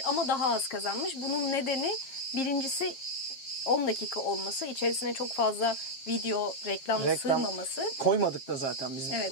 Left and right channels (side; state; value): right; late; 7.4 ms